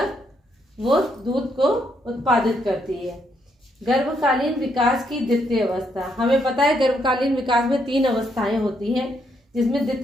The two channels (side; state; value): both; normal; correlation 0.75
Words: वो दूध को उत्पादित करती है। गर्भकालीन विकास की द्वितीय अवस्था, हमें पता है गर्भकालीन विकास में 3 अवस्थाएं होती हैं, जिसमें